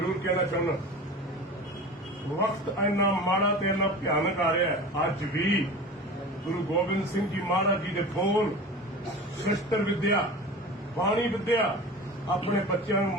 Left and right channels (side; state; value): both; normal; correlation 0.34